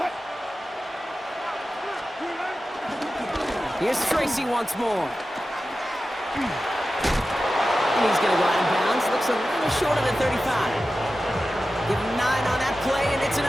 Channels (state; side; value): normal; both; correlation 0.94